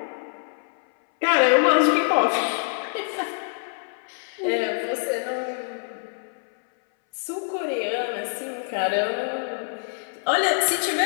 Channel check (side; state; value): right; silent; 62 dB below the other